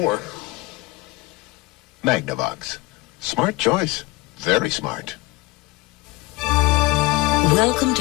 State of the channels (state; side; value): quieter; right; 21.1 dB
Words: Magnavox. Smart choice. Very smart. Welcome